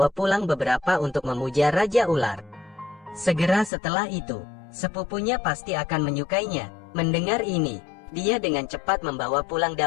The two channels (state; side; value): drops out; right; at 3.7 s